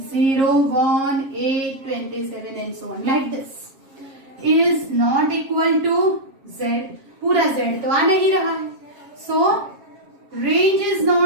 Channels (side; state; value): left; late; 7.4 ms